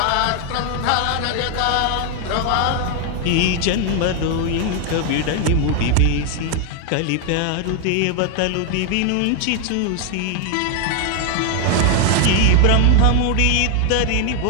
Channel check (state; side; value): different; both; correlation 0.01